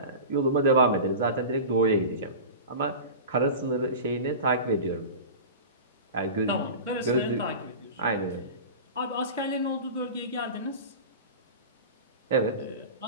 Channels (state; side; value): inverted; both; correlation -0.32